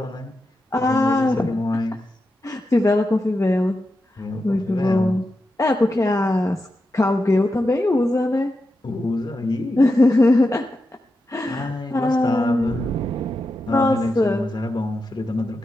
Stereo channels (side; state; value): both; normal; correlation 0.89